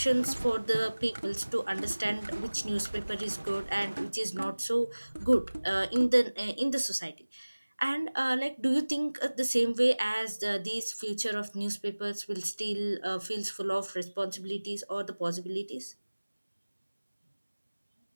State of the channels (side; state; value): both; inverted; correlation -1.00